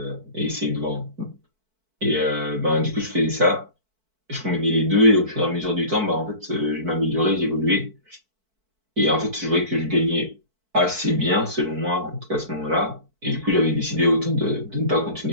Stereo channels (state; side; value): late; left; 4.5 ms